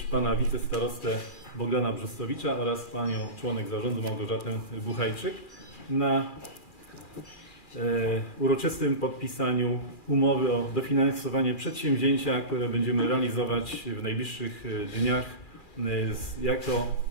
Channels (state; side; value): late; right; 2.4 ms